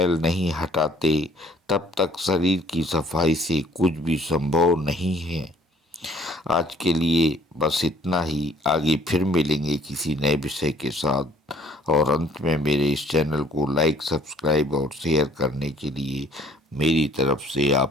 नहीं हटाते, तब तक शरीर की सफाई से कुछ भी संभव नहीं है। आज के लिए बस इतना ही। आगे फिर मिलेंगे किसी नए विषय के साथ। और अंत में मेरे इस चैनल को लाइक, सब्सक्राइब और शेयर करने के लिए मेरी तरफ से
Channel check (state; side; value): normal; both; correlation 0.57